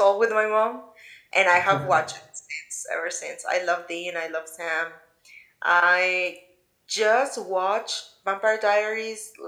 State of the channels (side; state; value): both; identical; correlation 1.00